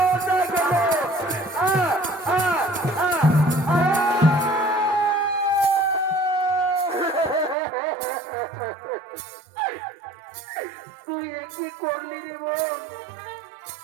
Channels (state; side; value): drops out; left; at 7.6 s